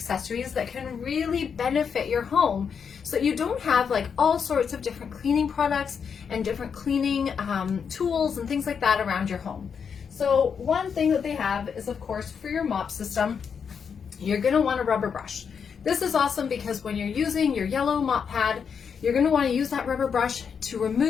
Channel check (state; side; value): quieter; right; 6.6 dB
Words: that can really benefit your home, so that you don't have like all sorts of different cleaning products and different cleaning tools and things like that around your home. So one thing that they have is, of course, for your mop system, you're going to want a rubber brush. This is awesome because when you're using your yellow mop pad, you're going to want to use that rubber brush to